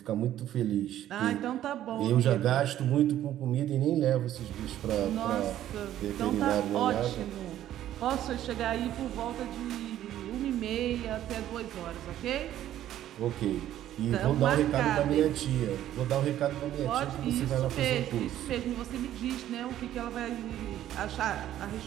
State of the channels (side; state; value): left; quieter; 12.3 dB